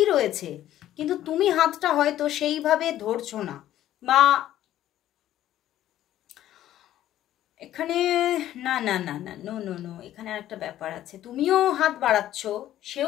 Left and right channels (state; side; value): quieter; right; 12.8 dB